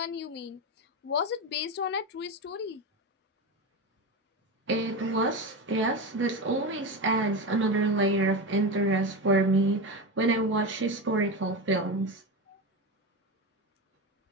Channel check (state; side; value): normal; both; correlation 0.19